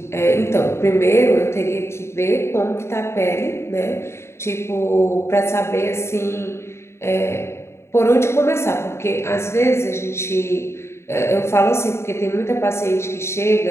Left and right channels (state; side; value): late; right; 0.13 ms